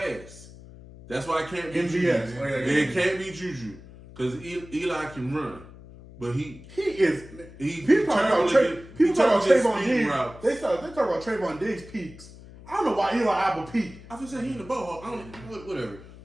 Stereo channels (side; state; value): left; noise; hum, 18 dB below the sound